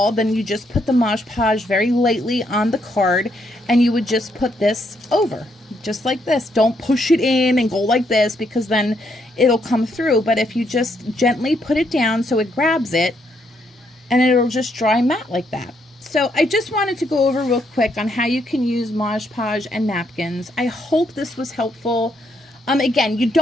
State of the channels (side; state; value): both; normal; correlation 0.75